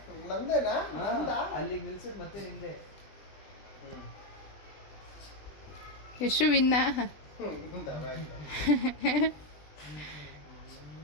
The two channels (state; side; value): late; right; 20 ms